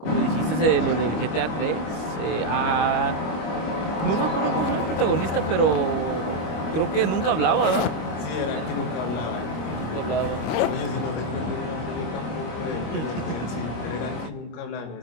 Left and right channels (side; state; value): right; late; 25 ms